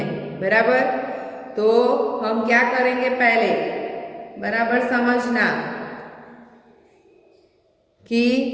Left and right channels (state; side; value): identical; both; correlation 1.00